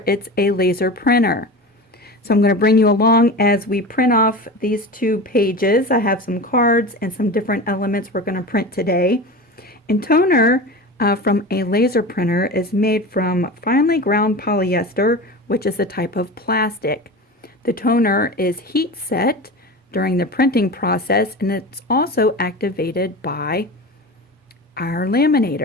it's a laser printer. So I'm going to bring you along as we print off these two pages. I have some cards and some different elements we're going to print today. And toner from a laser printer is made from finely ground polyester, which is a type of plastic. The toner is heat set during the printing process, and it's also activated by our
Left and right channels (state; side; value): normal; both; correlation 0.30